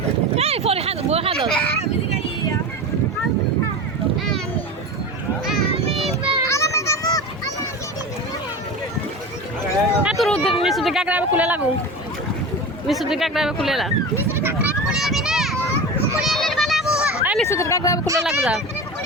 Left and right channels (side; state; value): both; normal; correlation 0.29